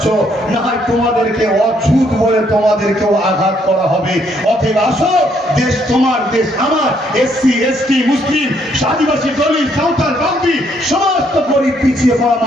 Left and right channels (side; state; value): both; normal; correlation 0.70